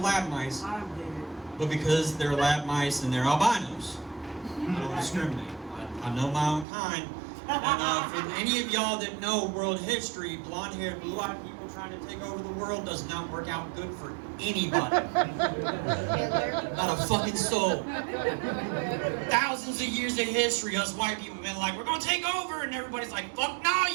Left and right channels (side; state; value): left; drops out; at 6.7 s